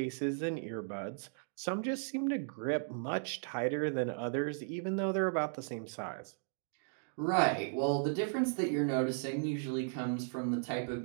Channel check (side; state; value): left; silent; digital silence